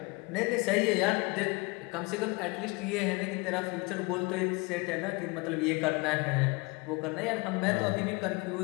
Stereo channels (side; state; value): right; quieter; 27.1 dB